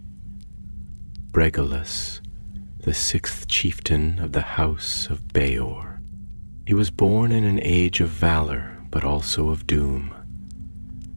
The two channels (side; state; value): both; inverted; correlation -1.00